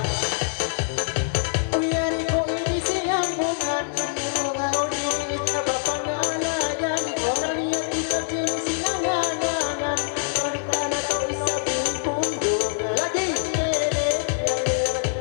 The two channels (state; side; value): silent; right; digital silence